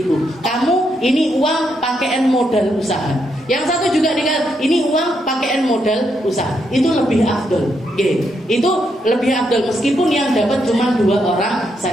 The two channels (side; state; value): both; normal; correlation 0.79